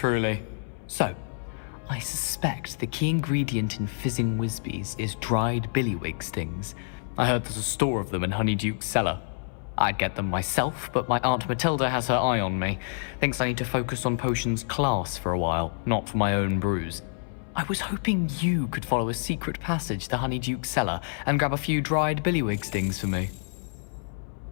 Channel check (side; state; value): right; silent; 58 dB below the other